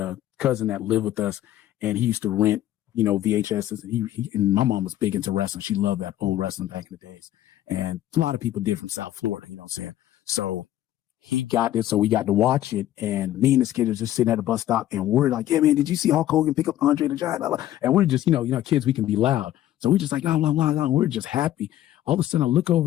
a cousin that lived with us, and he used to rent, you know, VHSs. And my mom was big into wrestling. She loved that old wrestling back in the days. And a lot of people did from South Florida, you know what I'm saying? So he got this, so we got to watch it. And me and this kid was just sitting at the bus stop, and we're like, yeah, man, did you see Hulk Hogan pick up Andre the Giant? And we're just, you know, kids, we can be loud. So we're just like, blah, blah, blah, blah. We're just happy. All of a sudden I look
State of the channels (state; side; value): quieter; right; 13.1 dB